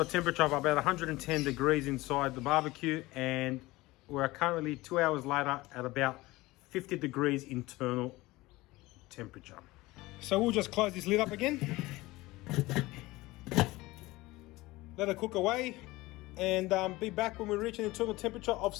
a temperature of about 110 degrees inside the barbecue, and we're currently 2 hours later at about 50 degrees internal temperature. So we'll just close this lid up again. Let it cook away, and be back when we reach an internal temperature of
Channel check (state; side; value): quieter; right; 19.9 dB